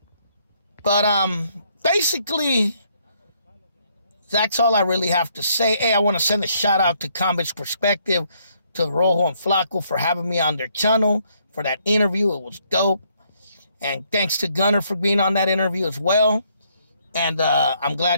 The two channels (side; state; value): both; inverted; correlation -0.70